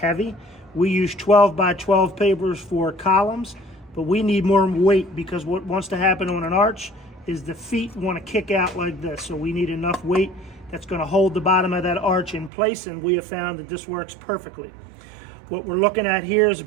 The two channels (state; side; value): drops out; left; at 12.5 s